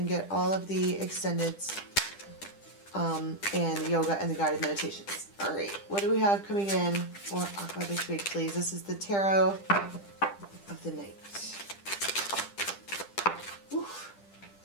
get all of the extendeds and the yoga and the guided meditations. All right, what do we have coming in for Aqua this week, please? This is the Tarot of the Night. Oof.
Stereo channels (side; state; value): right; late; 10 ms